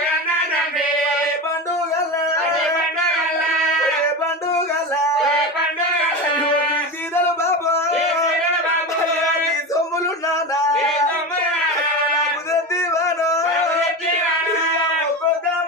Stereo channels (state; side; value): normal; both; correlation 0.23